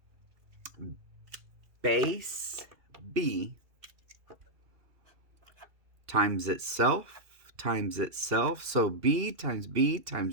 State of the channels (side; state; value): left; late; 2.5 ms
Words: base B times itself times itself. So B times B